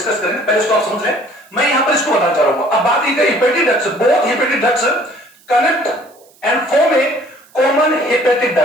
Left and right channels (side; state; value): right; noise; hiss, 30 dB below the sound